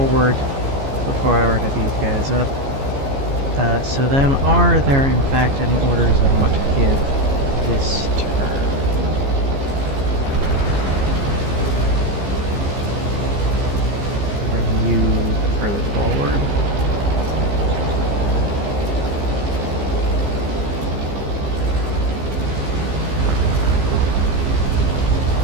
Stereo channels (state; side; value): late; left; 15 ms